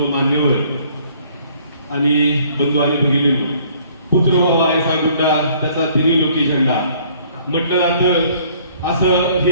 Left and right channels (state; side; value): inverted; both; correlation -0.59